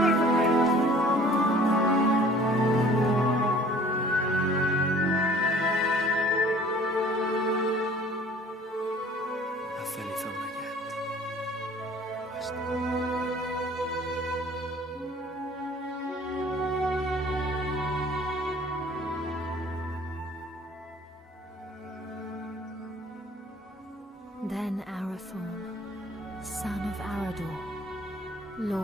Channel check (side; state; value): both; normal; correlation 0.51